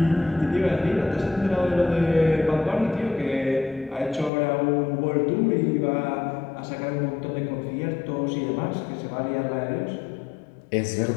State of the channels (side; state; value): right; drops out; at 4.3 s